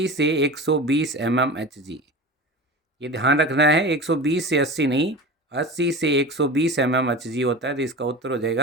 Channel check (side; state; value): both; normal; correlation 0.32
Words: से 120 mmHg। ये ध्यान रखना है, 120 से 80 नहीं, 80 से 120 mmHg होता है। तो इसका उत्तर हो